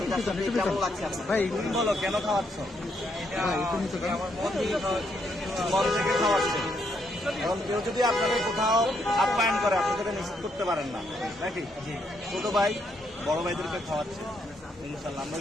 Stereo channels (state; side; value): normal; both; correlation 0.75